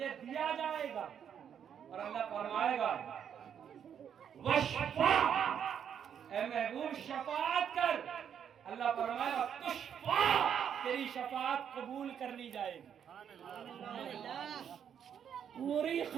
دیا جائے گا۔ اور اللہ فرمائے گا وَشْفَعْ، اے محبوب شفاعت کر۔ اللہ فرمائے گا تُشْفَعْ، تیری شفاعت قبول کر لی جائے گی۔ پوری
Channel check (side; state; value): left; quieter; 8.4 dB